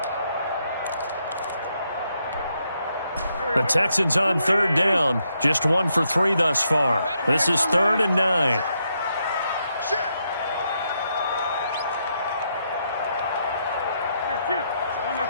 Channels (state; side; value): inverted; both; correlation -0.79